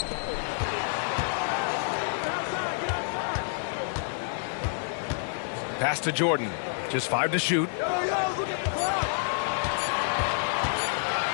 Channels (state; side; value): silent; right; 59 dB below the other